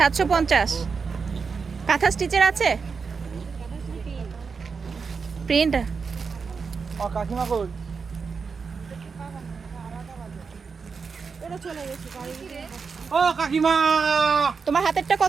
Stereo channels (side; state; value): left; quieter; 5.3 dB